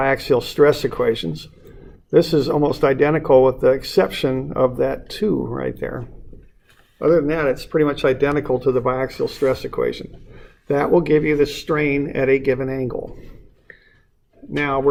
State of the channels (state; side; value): identical; both; correlation 1.00